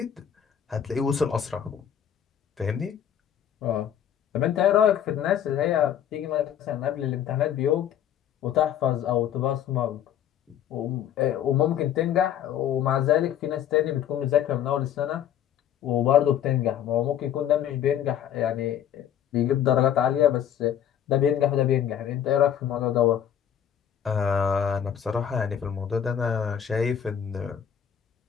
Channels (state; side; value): quieter; right; 9.6 dB